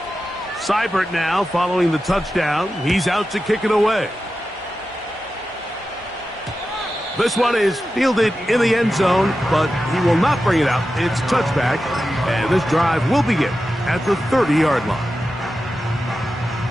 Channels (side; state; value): both; normal; correlation 0.92